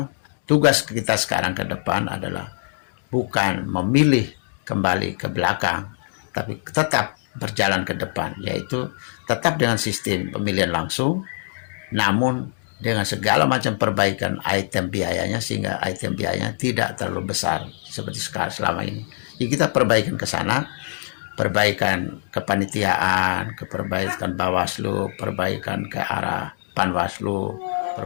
tugas kita sekarang ke depan adalah bukan memilih kembali ke belakang, tapi tetap berjalan ke depan, yaitu tetap dengan sistem pemilihan langsung, namun dengan segala macam perbaikan item biayanya, sehingga item biayanya tidak terlalu besar seperti sekarang selama ini. Jadi kita perbaikan ke sana, perbaikan kepanitiaan, perbaikan Bawaslu, perbaikan ke arah Panwaslu,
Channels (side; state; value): right; silent; digital silence